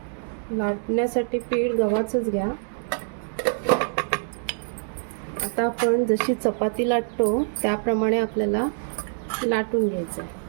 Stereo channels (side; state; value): left; silent; digital silence